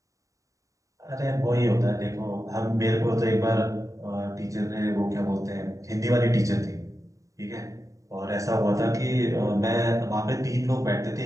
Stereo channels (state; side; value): late; left; 0.16 ms